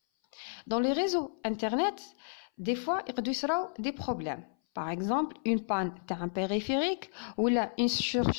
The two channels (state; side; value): silent; right; 56 dB below the other